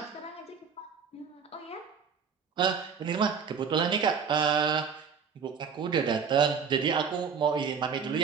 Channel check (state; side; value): quieter; left; 6.4 dB